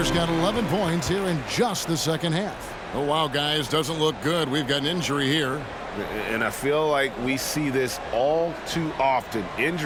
got 11 points here in just the second half. Oh, wow, guys, doesn't look good. We've got an injury here. And I feel like we see this all too often.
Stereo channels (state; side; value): identical; both; correlation 1.00